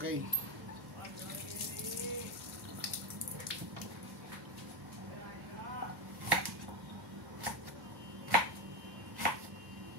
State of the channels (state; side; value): normal; both; correlation 0.14